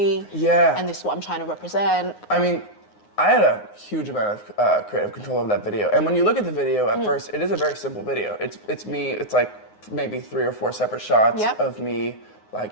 Yeah. And this is what I'm trying to represent? I mean, I had a huge amount of creative control over that video. And when you look at the video at first, it is a very simple video. It's me, it's like maybe 3 or 4 separate shots of me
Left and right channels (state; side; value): late; right; 9.6 ms